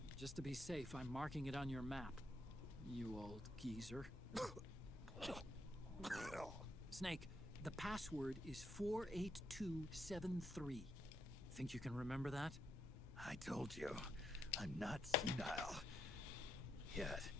Just to be safe, I'm marking it on your map. You old geezer. Snake, the password is 48273. Think you can remember that? I told you, I'm not senile yet.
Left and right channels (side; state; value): both; normal; correlation 0.78